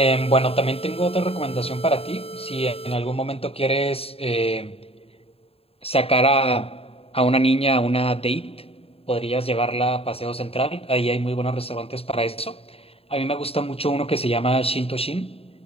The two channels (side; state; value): right; late; 0.28 ms